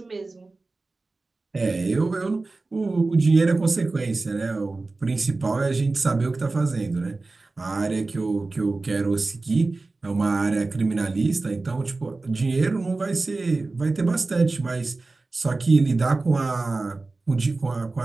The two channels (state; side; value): quieter; left; 3.5 dB